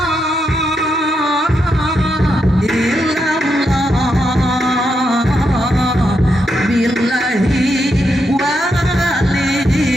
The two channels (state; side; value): normal; both; correlation 0.82